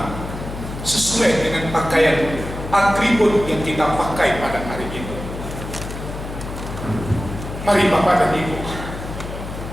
sesuai dengan pakaian atribut yang kita pakai pada hari ini. Mari bapak dan ibu,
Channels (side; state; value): left; noise; hum, 9 dB below the sound